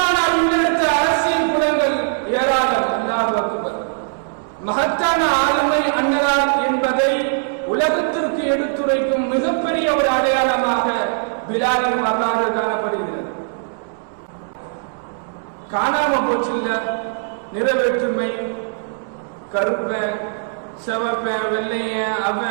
முன்னெடுத்த அரசியல் குணங்கள் ஏராளம். அல்லாஹ் அக்பர். மகத்தான ஆளுமை அன்னதார் என்பதை உலகத்திற்கு எடுத்துரைக்கும் மிகப்பெரிய ஒரு அடையாளமாக பிலாலின் வரலாறு காணப்படுகிறது. காணாம போச்சுங்க நிறைவேற்றுமை, கருப்ப செவப்ப வெள்ளைய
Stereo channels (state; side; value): silent; left; digital silence